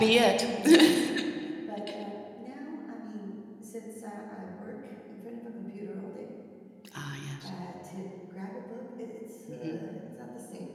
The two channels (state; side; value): identical; both; correlation 1.00